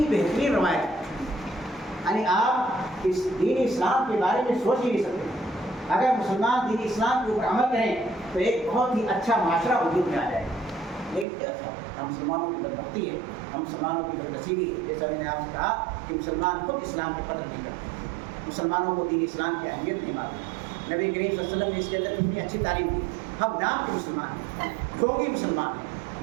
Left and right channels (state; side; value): drops out; left; at 11.2 s